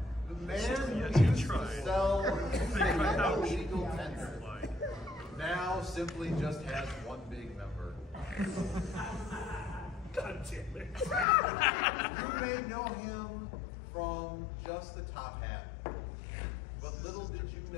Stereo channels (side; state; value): right; drops out; at 11.2 s